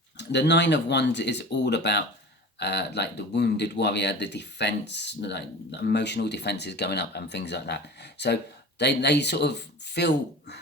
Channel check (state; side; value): normal; both; correlation 0.37